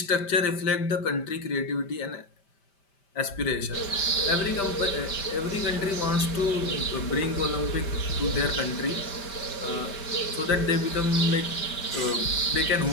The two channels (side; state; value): right; late; 5.1 ms